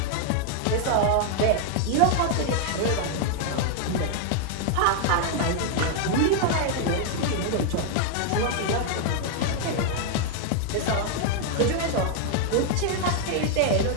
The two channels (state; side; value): different; both; correlation 0.00